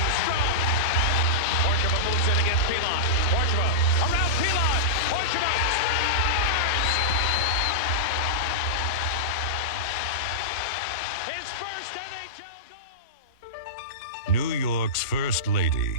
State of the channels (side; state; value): both; normal; correlation -0.10